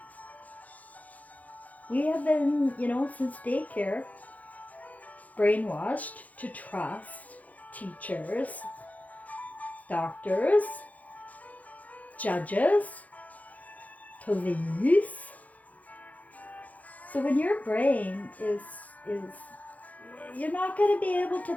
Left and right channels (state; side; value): late; right; 0.075 ms